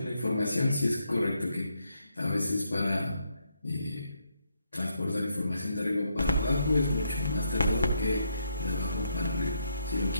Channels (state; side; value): inverted; both; correlation -0.77